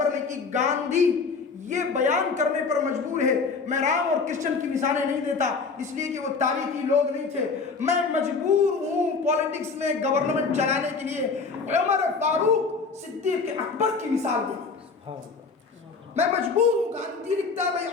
نے کی. گاندھی یہ بیان کرنے پر مجبور ہے، میں رام اور کرشن کی مثالیں نہیں دیتا اس لیے کہ وہ تاریخی لوگ نہیں تھے، میں مجبور ہوں پولیٹکس میں گورنمنٹ چلانے کے لیے عمر فاروق صدیق اکبر کی مثال دیں. میں مجبور ہوں. گاندھی لکھتا ہے بھائی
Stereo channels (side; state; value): right; quieter; 4.7 dB